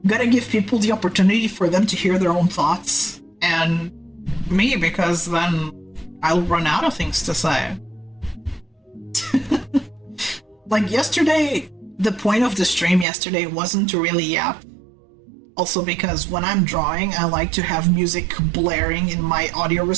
opportunity for them to hear their own thoughts and me, because then I'll run out of things to say. Like yesterday, the point of the stream yesterday wasn't to really yap. Also because when I'm drawing, I like to have music blaring in my audio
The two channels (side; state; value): left; drops out; at 13.1 s